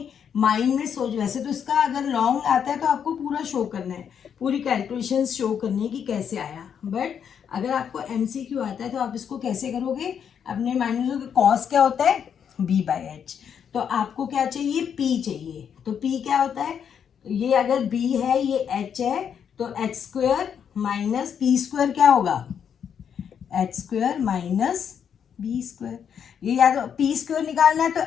माइंड में सोच, वैसे तो इसका अगर लॉन्ग आता है तो आपको पूरा शो करना है, पूरी कैलकुलेशन शो करनी है कि कैसे आया. बट अगर आपको MCQ आता है तो आप इसको कैसे करोगे? अपने माइंड में सोचोगे कॉस क्या होता है? b/h. तो आपको क्या चाहिए? p चाहिए. तो p क्या होता है? ये अगर b है, ये h है, तो h² माइनस p² क्या होगा? h² minus b². ये या तो p² निकालना है तो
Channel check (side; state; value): right; quieter; 7.9 dB